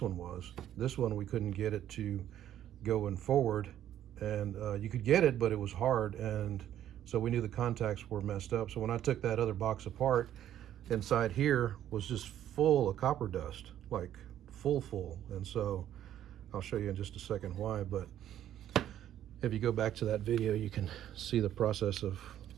one was. This one we couldn't get it to go in forward, and you could get it, but it was hard, and so we knew the contacts were messed up. So when I took that other box apart, inside here was just full of copper dust, like full. And so I'll show you in just a second why. But if you go back to that video, you can see the process of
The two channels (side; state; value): left; quieter; 11.3 dB